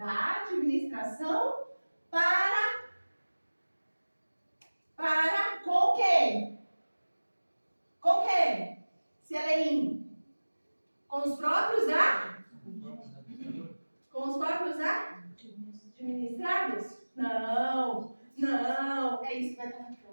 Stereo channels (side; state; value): both; inverted; correlation -1.00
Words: administração para com quem? Com quem? Se ela é com os próprios administrados? Não. É isso que vai estar